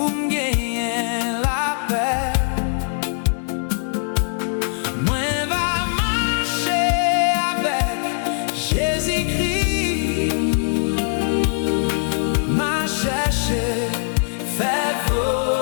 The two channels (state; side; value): silent; right; digital silence